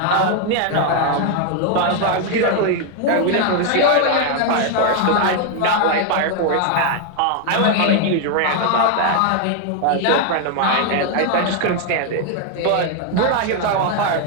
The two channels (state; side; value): different; both; correlation 0.00